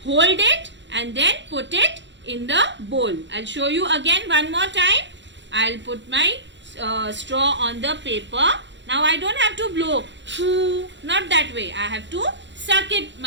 hold it, and then put it in the bowl. I'll show you again one more time. I'll put my straw on the paper. Now I don't have to blow. Not that way. I have to suck it. I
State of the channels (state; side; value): late; left; 0.53 ms